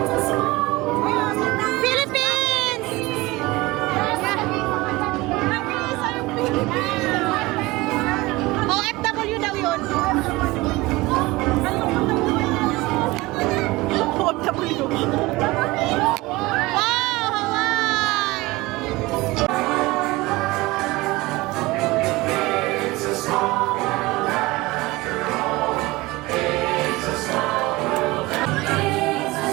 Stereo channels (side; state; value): left; quieter; 21.0 dB